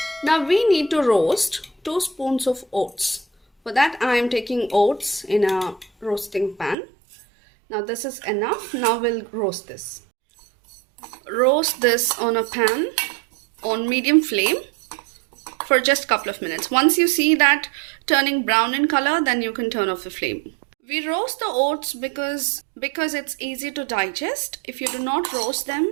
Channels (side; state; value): left; drops out; at 6.8 s